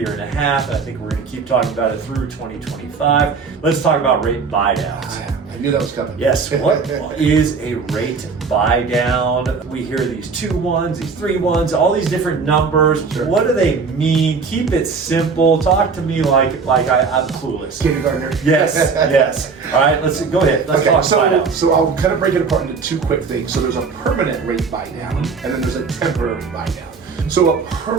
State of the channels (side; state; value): left; quieter; 5.1 dB